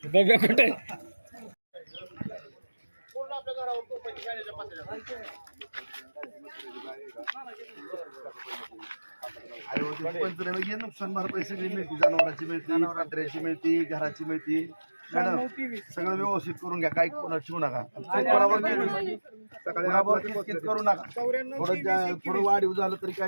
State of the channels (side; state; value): both; inverted; correlation -1.00